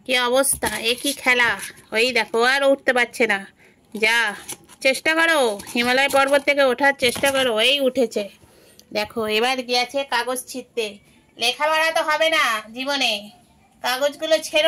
কি অবস্থা, একই খেলা। ওই দেখো আর উঠতে পারছে না। যা চেষ্টা করো, হিমালয় পর্বত থেকে ওঠার চেষ্টা করো। এই উঠেছে, দেখো এবার গিয়েছে কাগজ ছিঁড়তে। লেখাপড়া তো হবে না জীবনে, কাগজগুলো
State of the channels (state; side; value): identical; both; correlation 1.00